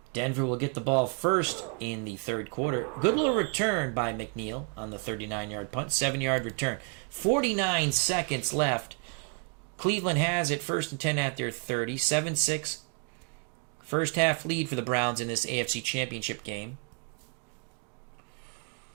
Denver will get the ball first in the 3rd quarter. Good little return by McNeil on the 39-yard punt. 7-yard return. 49 seconds left. Cleveland has it 1st and 10 at their 30. 7-6. First half lead for the Browns in this AFC Championship game.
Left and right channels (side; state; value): left; quieter; 34.1 dB